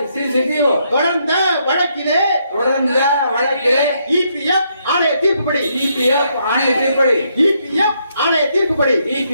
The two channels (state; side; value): inverted; both; correlation -0.75